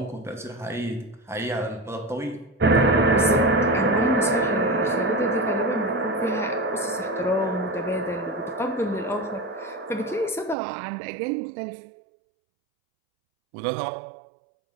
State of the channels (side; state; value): left; drops out; at 10.6 s